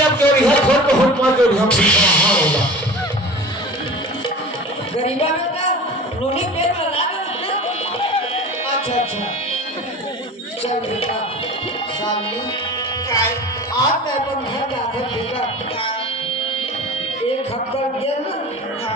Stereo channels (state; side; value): normal; both; correlation 0.37